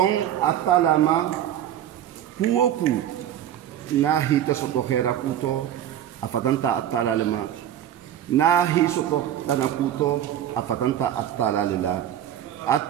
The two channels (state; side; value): quieter; left; 11.0 dB